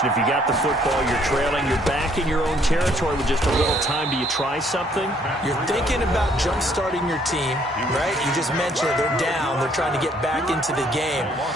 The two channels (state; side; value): normal; both; correlation 0.64